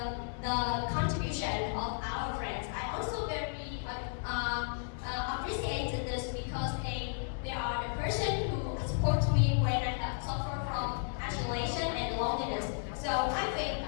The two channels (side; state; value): right; silent; digital silence